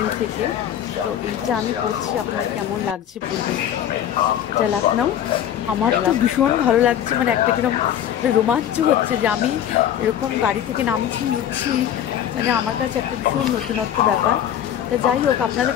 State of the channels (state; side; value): quieter; right; 10.3 dB